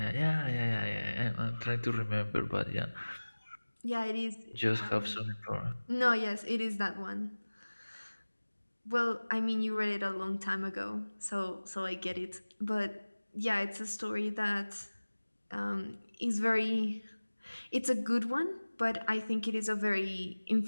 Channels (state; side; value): inverted; both; correlation -1.00